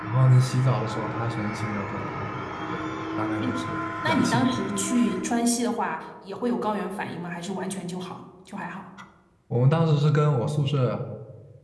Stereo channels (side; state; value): both; identical; correlation 1.00